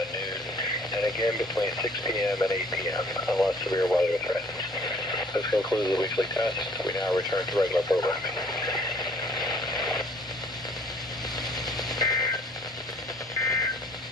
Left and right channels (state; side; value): normal; both; correlation 0.57